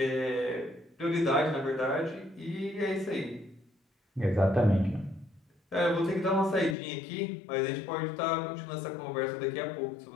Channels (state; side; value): drops out; right; at 6.8 s